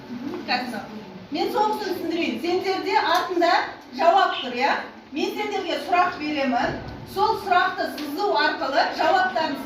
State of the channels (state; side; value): identical; both; correlation 1.00